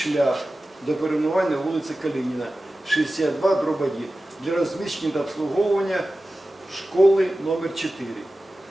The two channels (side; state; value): both; normal; correlation 0.95